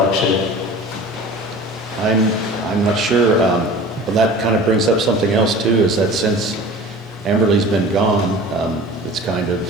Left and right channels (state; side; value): normal; both; correlation 0.39